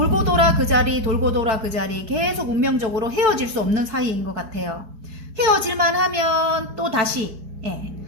돌아 그 자리 계속 운명적으로 헤어질 수 없는 사이인 것 같아요. 헤어질만 하면 또 다시, 예.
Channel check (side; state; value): left; late; 4.5 ms